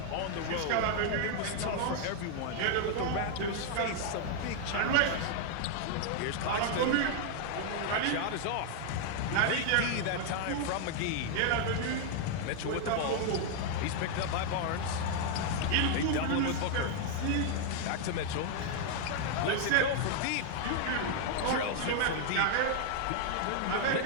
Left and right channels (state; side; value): different; both; correlation 0.00